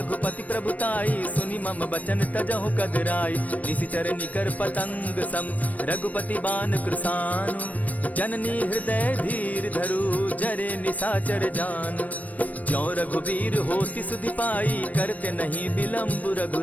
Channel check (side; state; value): right; late; 0.072 ms